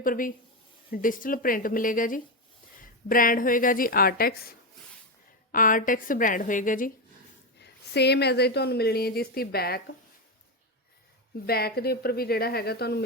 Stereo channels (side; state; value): both; normal; correlation 0.11